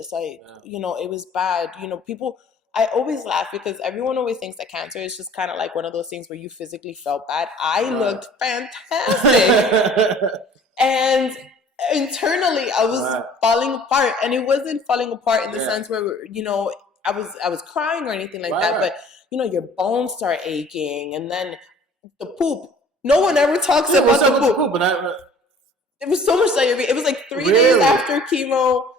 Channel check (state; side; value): normal; both; correlation 0.51